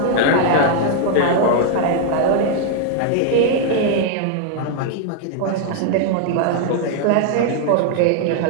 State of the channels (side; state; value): both; different; correlation 0.00